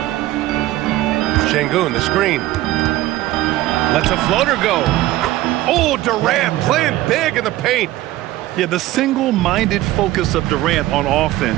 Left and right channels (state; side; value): quieter; left; 16.1 dB